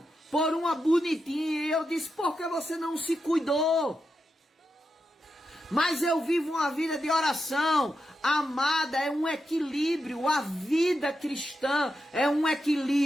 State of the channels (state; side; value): normal; both; correlation 0.87